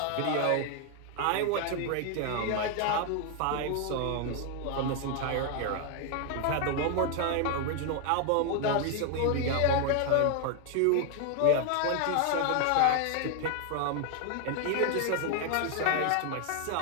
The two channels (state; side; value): different; both; correlation 0.00